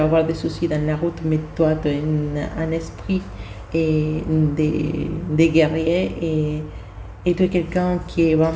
des soucis dans la route, mais toi tu as un esprit de guerrier et tu es quelqu'un qui est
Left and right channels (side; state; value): both; identical; correlation 1.00